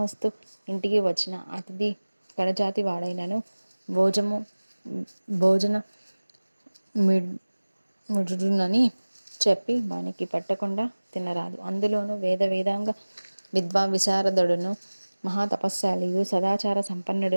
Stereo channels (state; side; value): inverted; both; correlation -1.00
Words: ఇంటికి వచ్చిన అతిథి కడజాతి వాడైనను భోజము భోజన మిడునని చెప్పి వానికి పెట్టకుండా తినరాదు. అందులోనూ వేదాంగ విశారదుడును మహాతపస్శాలియు సదాచార సంపన్నుడు